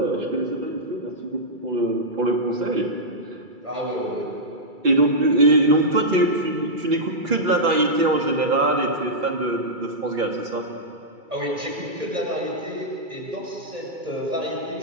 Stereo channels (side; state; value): left; late; 2.3 ms